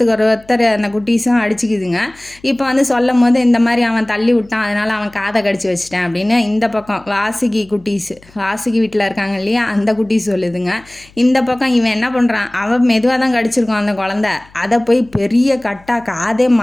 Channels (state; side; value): noise; left; hum, 27 dB below the sound